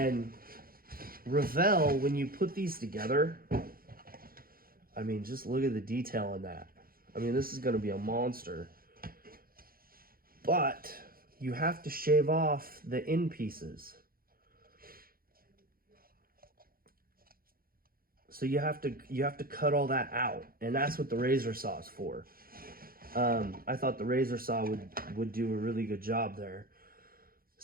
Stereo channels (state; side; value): late; left; 0.42 ms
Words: Revell, when you put these together, just look at the detail on that. This is going to be a monster. But you have to shave off the end pieces. So you have to cut all that out, and that's what the razor saw is for. I thought the razor saw would do a really good job there.